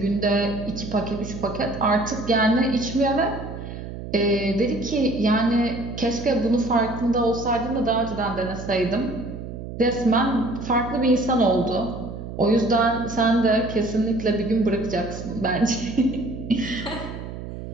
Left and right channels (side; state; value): right; noise; hum, 9 dB below the sound